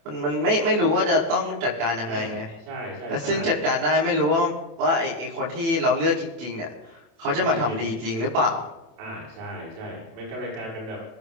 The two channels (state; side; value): late; left; 27 ms